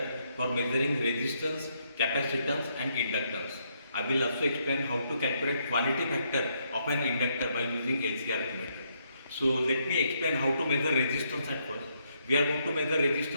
for measuring resistance, capacitance and inductance. I will also explain how to calculate quality factor of an inductor by using LCR Q meter. So let me explain how to measure resistance at first. We are going to measure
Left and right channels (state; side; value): inverted; both; correlation -0.75